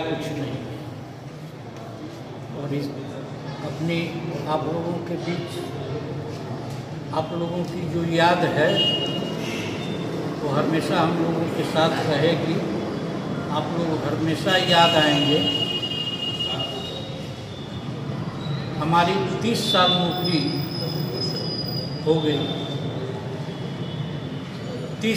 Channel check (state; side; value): identical; both; correlation 1.00